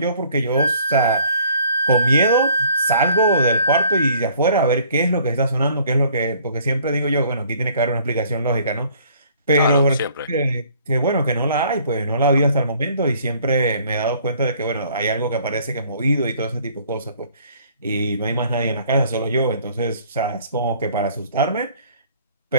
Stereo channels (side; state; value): both; inverted; correlation -0.58